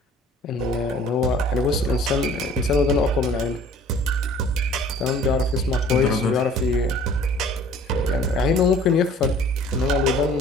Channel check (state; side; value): normal; both; correlation 0.51